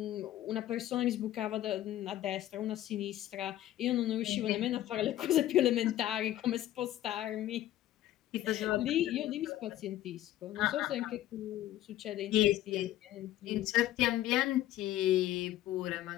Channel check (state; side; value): quieter; right; 13.9 dB